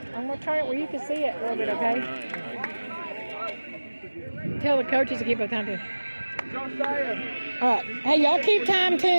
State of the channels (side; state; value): both; inverted; correlation -1.00